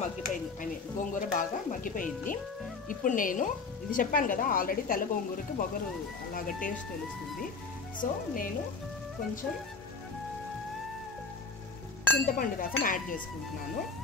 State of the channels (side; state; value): right; quieter; 4.5 dB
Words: మగ్గిపోయింది, గోంగూర బాగా మగ్గిపోయింది. ఇప్పుడు నేను ఇది చెప్పాను కదా, ఆల్రెడీ తెల్ల గోంగూరకి బొగరు అలాగా టేస్ట్ తెలుస్తుంది. సో నేను కొంచెం చింతపండు రసం యాడ్ చేసుకుంటున్నాను.